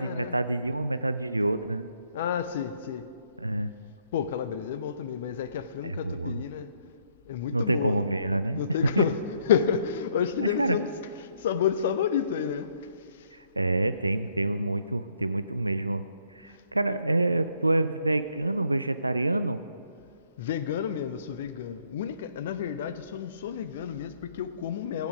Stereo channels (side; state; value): both; inverted; correlation -0.69